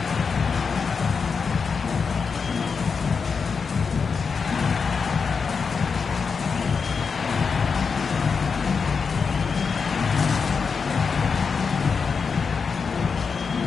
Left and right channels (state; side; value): quieter; right; 5.5 dB